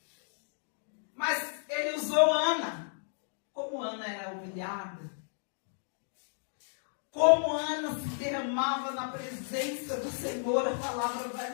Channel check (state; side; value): silent; right; digital silence